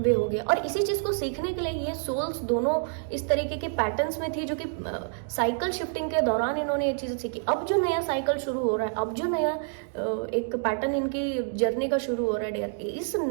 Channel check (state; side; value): silent; left; digital silence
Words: हो गया। और इसी चीज़ को सीखने के लिए ये सोल्स दोनों इस तरीके के पैटर्न्स में थी, जो कि साइकिल शिफ्टिंग के दौरान इन्होंने ये चीज़ें सीखी। अब जो नया साइकिल शुरू हो रहा है, अब जो नया एक पैटर्न इनकी जर्नी का शुरू हो रहा है डियर, इस